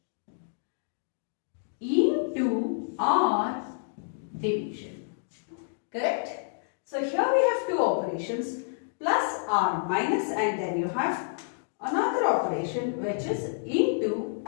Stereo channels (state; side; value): silent; right; digital silence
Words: into or division. Correct? So here we have two operations, plus or minus, and then you have another operation which is into